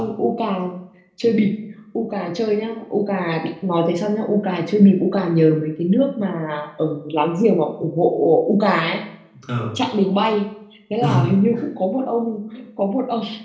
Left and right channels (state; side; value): identical; both; correlation 1.00